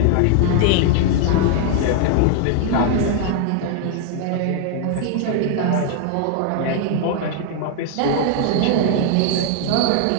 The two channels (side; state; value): both; different; correlation 0.00